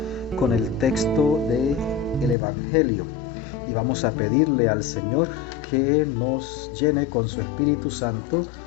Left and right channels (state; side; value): drops out; right; at 2.4 s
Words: con el texto del Evangelio y vamos a pedirle al Señor que nos llene con su Espíritu Santo,